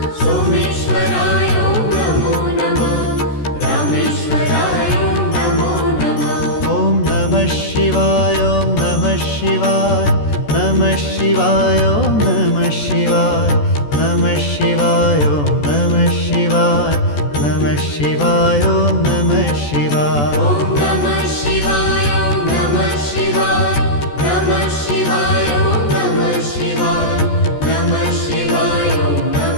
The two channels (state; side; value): late; right; 14 ms